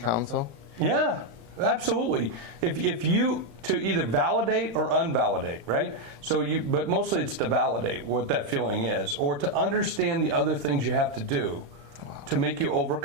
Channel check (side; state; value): left; late; 35 ms